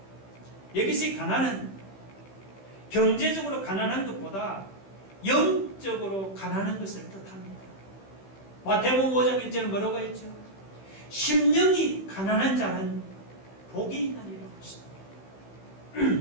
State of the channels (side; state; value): right; late; 15 ms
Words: 여기서 가난은 경제적으로 가난한 것보다 영적으로 가난한 것을 뜻합니다. 마태복음 5장 1절은 뭐라고 했죠? 심령이 가난한 자는 복이 있나니라고 했습니다.